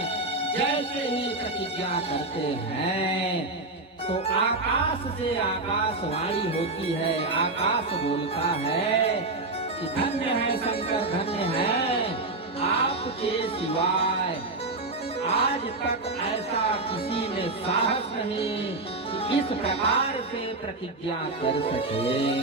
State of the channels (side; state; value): left; quieter; 3.1 dB